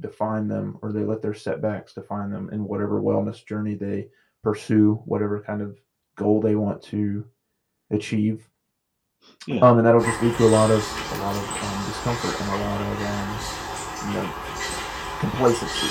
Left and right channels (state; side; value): identical; both; correlation 1.00